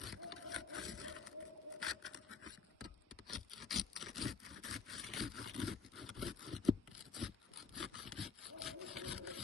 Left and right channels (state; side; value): quieter; right; 5.1 dB